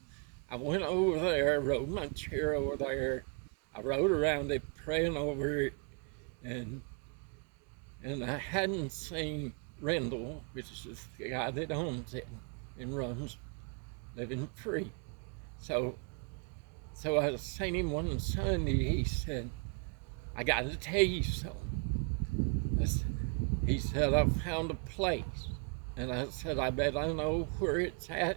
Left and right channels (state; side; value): quieter; left; 37.1 dB